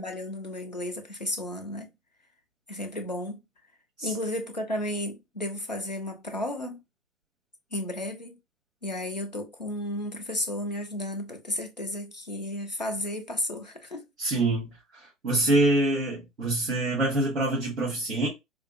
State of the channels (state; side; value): normal; both; correlation 0.39